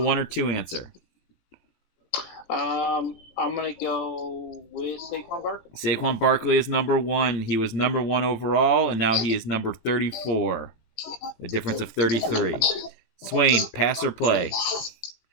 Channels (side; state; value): right; late; 17 ms